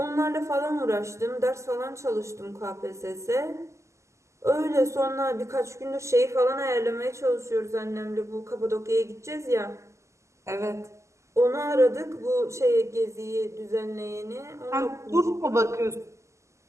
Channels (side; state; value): left; late; 0.14 ms